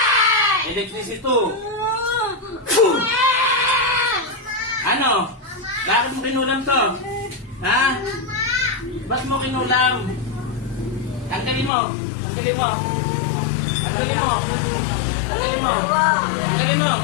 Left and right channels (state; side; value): drops out; right; at 11.7 s